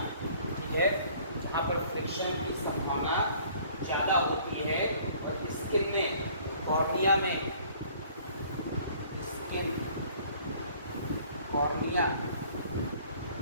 ठीक है, जहाँ पर फ्रिक्शन की संभावना ज़्यादा होती है और स्किन में, कॉर्निया में, स्किन कॉर्निया,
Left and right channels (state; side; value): inverted; both; correlation -0.55